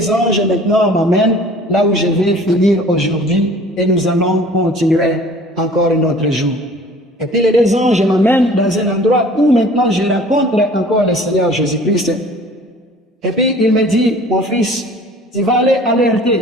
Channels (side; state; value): both; normal; correlation 0.48